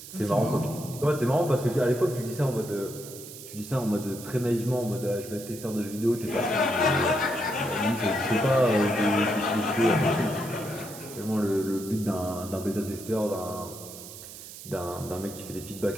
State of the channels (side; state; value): right; noise; hiss, 14 dB below the sound